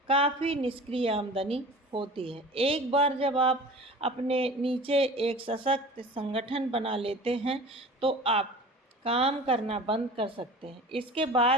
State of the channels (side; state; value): both; normal; correlation 0.39